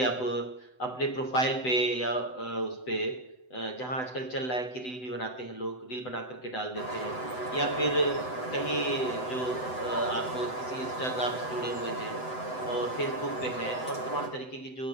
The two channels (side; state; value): right; late; 7.9 ms